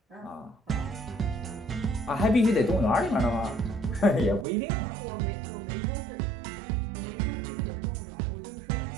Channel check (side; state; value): left; drops out; at 4.5 s